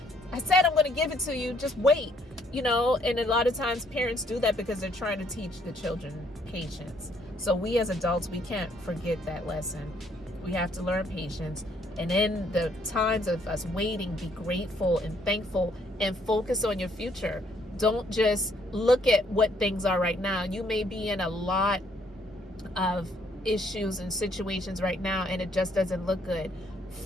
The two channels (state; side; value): normal; both; correlation 0.67